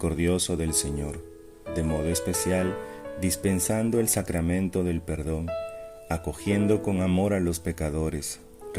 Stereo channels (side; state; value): both; identical; correlation 1.00